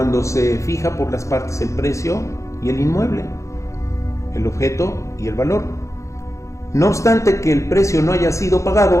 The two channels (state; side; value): late; right; 0.15 ms